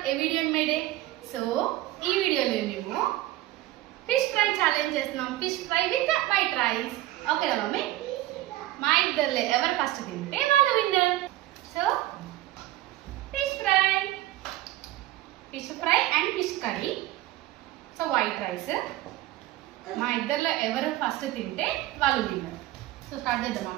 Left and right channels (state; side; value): quieter; left; 15.8 dB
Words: a video made. So ఈ వీడియోలో మేము ఫిష్ ఫ్రై ఛాలెంజ్ చేస్తున్నాం. Fish fry with white rice. ఓకేనా mummy? మా ఇద్దరులే ఎవరు ఫస్ట్ తింటే వాళ్ళు winner. So fish fry and fish curry. So white rice. మా ఇద్దరులో ఎవరు ఫస్ట్ తింటే వాళ్ళు విన్నర్. సో స్టార్ట్ చేద్దామా